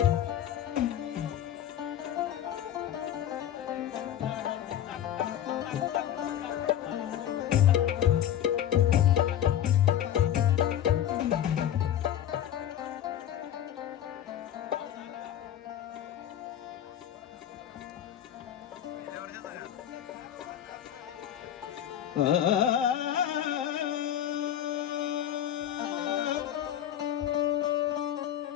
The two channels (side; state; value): right; quieter; 10.7 dB